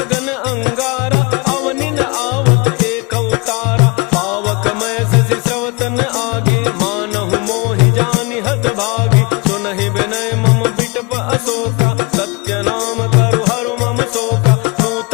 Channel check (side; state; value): right; quieter; 28.3 dB